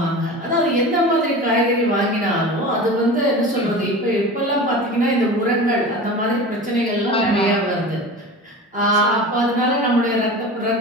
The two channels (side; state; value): both; normal; correlation 0.33